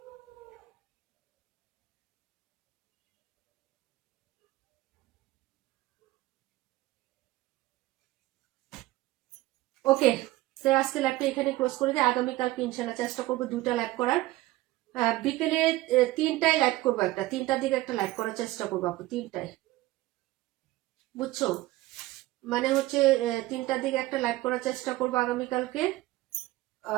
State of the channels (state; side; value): quieter; left; 17.9 dB